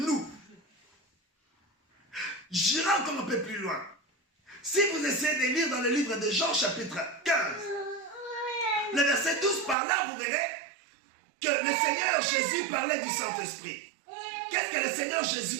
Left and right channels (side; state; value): left; drops out; at 9.8 s